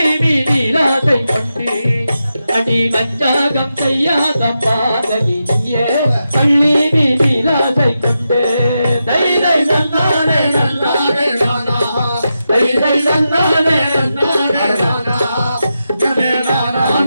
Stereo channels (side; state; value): both; inverted; correlation -0.88